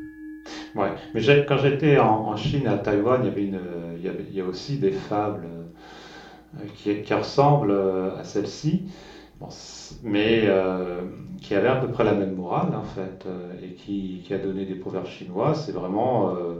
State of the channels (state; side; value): identical; both; correlation 1.00